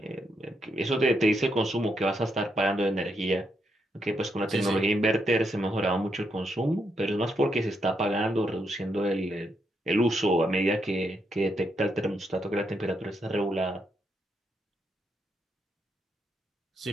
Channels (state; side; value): normal; both; correlation 0.80